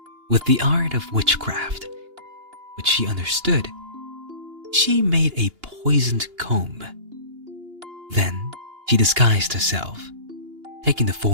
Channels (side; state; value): left; late; 2.8 ms